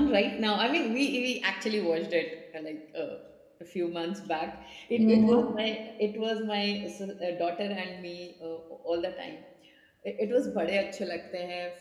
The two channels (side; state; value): both; identical; correlation 1.00